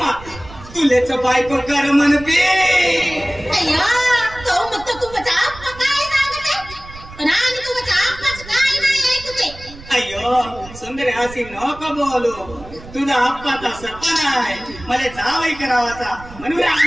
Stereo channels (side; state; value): right; noise; rumble, 17 dB below the sound